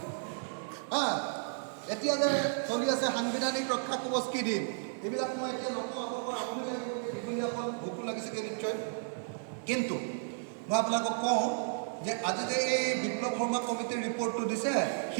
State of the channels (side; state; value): left; silent; digital silence